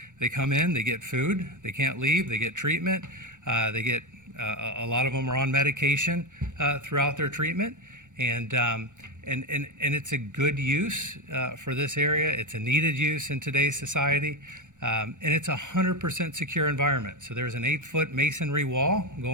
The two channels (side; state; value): left; late; 0.86 ms